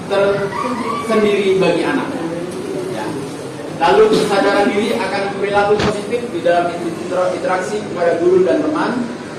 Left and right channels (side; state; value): both; identical; correlation 1.00